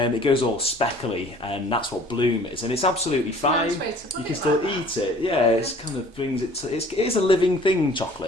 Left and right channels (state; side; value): normal; both; correlation 0.51